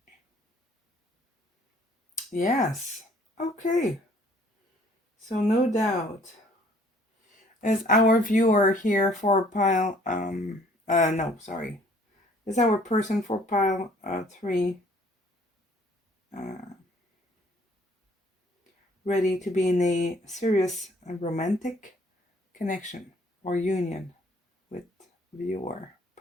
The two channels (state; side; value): normal; both; correlation 0.58